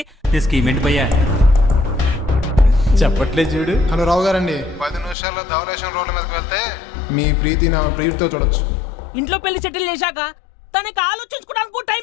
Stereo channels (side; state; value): right; drops out; at 5.2 s